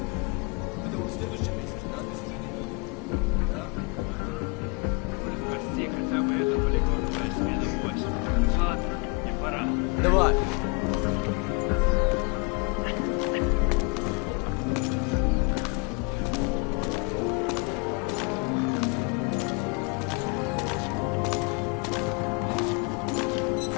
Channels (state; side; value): quieter; right; 32.8 dB